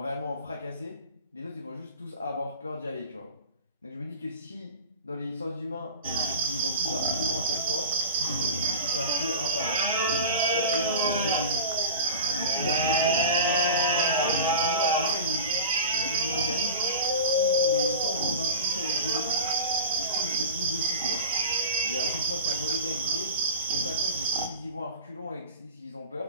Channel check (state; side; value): inverted; both; correlation -0.32